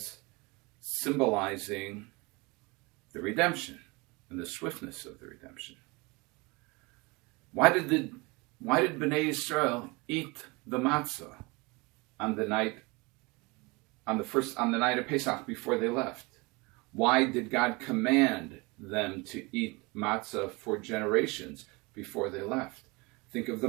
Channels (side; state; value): left; quieter; 26.1 dB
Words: symbolizing the redemption and the swiftness of the redemption. Why did Bnei Yisrael eat the matzah on the night of Pesach before they left? Why did God command them to eat matzah for generations before they left? Think of the